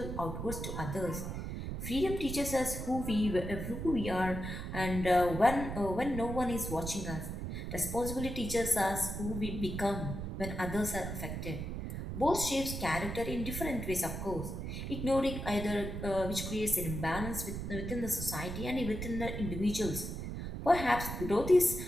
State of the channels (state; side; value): noise; right; rumble, 5 dB below the sound